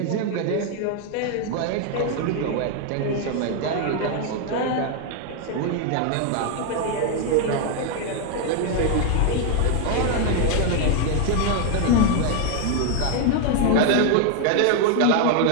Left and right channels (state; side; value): different; both; correlation 0.00